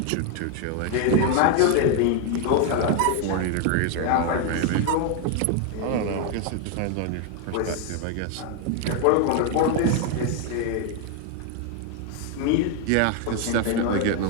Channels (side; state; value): both; different; correlation 0.00